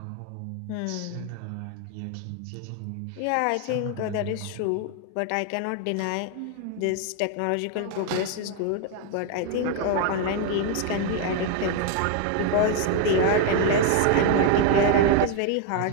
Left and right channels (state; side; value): different; both; correlation 0.01